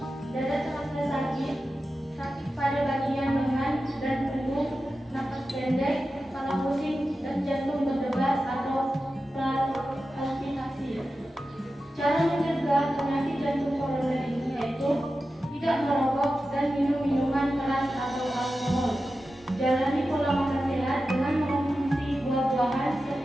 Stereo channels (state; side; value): normal; both; correlation 0.92